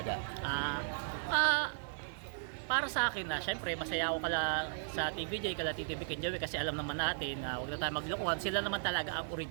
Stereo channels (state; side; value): silent; left; digital silence